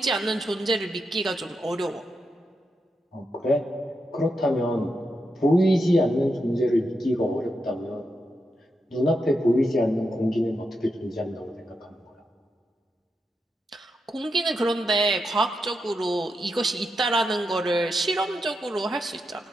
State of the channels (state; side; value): normal; both; correlation 0.85